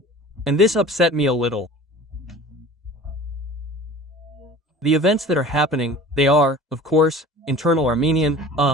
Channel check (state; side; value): normal; both; correlation 0.43